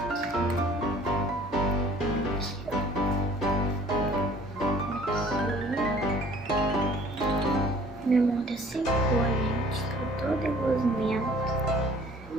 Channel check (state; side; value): normal; both; correlation 0.53